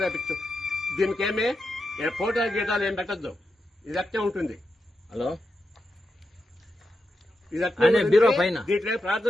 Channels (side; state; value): both; normal; correlation 0.87